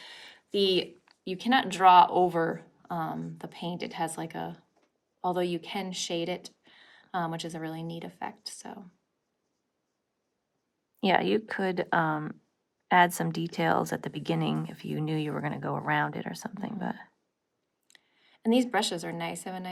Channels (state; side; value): identical; both; correlation 1.00